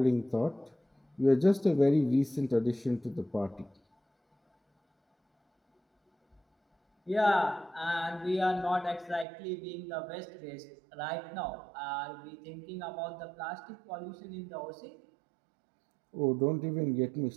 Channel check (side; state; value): left; drops out; at 9.2 s